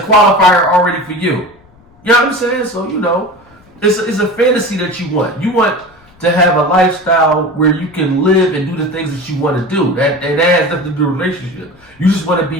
already for you. You know what I'm saying? So, you know, it's a fantasy that you want. You want to have a lifestyle where you can live and do the things that you want to do. That has nothing to do with a relationship. You just want to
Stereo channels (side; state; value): left; noise; rumble, 29 dB below the sound